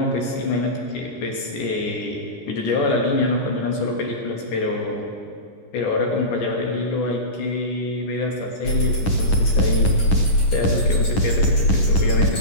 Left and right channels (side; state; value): right; late; 10 ms